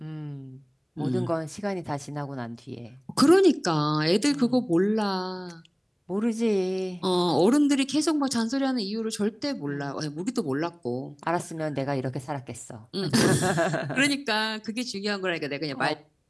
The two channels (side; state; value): both; identical; correlation 1.00